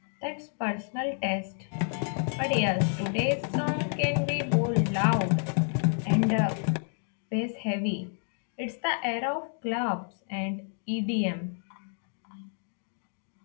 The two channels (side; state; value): right; silent; 58 dB below the other